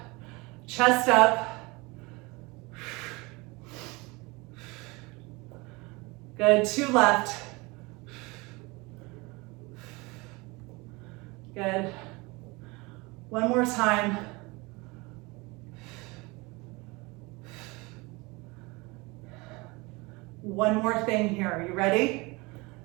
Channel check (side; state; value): left; quieter; 25.1 dB